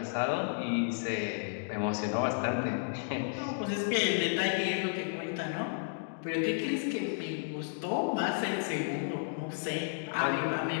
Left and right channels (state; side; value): silent; right; digital silence